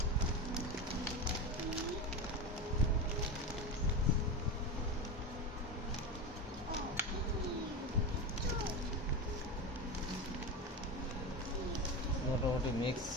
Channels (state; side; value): normal; both; correlation 0.20